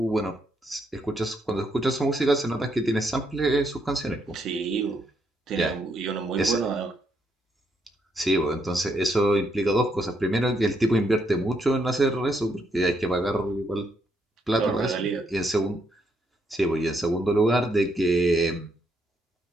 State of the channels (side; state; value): both; normal; correlation 0.76